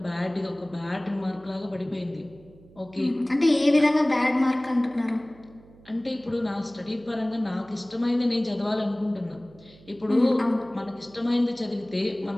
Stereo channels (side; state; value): right; noise; hum, 24 dB below the sound